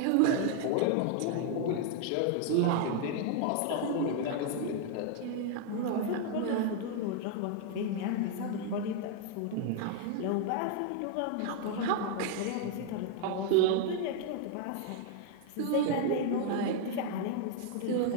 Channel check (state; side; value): different; both; correlation 0.00